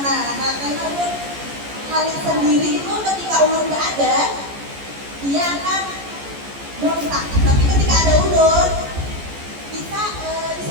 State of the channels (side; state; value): left; late; 14 ms